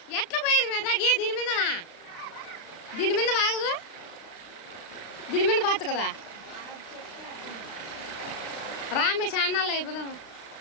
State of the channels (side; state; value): right; late; 36 ms